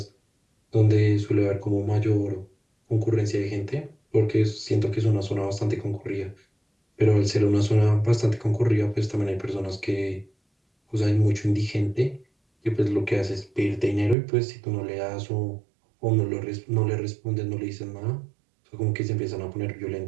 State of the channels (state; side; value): drops out; left; at 14.2 s